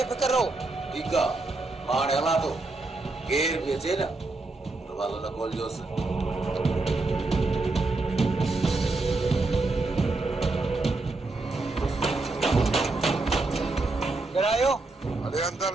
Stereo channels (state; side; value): quieter; left; 3.3 dB